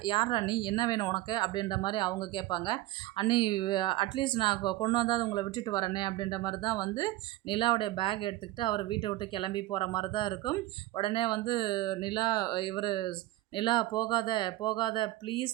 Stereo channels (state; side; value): quieter; left; 16.8 dB